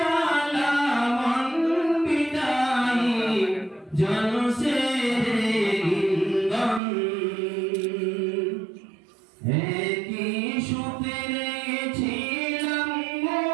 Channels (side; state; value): left; drops out; at 6.8 s